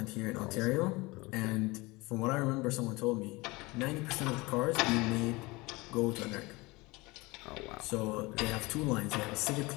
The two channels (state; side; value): quieter; right; 23.2 dB